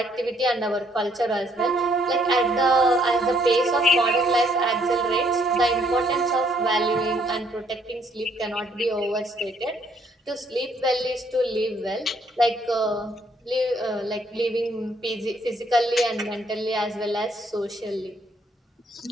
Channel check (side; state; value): both; normal; correlation 0.67